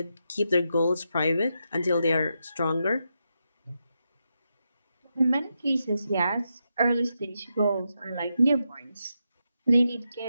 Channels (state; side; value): inverted; both; correlation -0.85